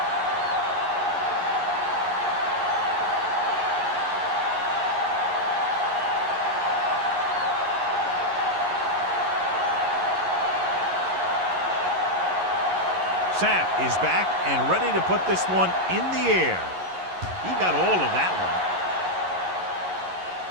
Sapp is back and ready to put this one in the air. He got all of that one.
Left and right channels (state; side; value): late; left; 11 ms